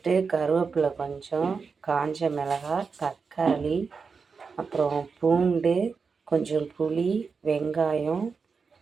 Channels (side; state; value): left; quieter; 5.2 dB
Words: கருவேப்பிலை கொஞ்சம், காஞ்ச மிளகாய், தக்காளி, அப்புறம் பூண்டு, கொஞ்சம் புளி, வெங்காயம்,